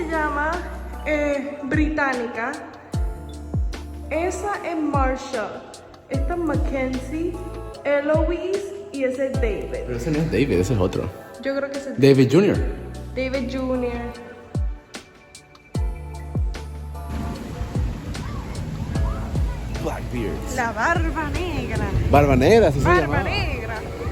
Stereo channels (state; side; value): identical; both; correlation 1.00